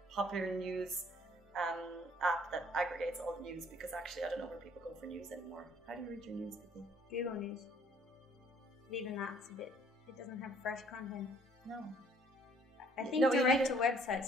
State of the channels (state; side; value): normal; both; correlation 0.60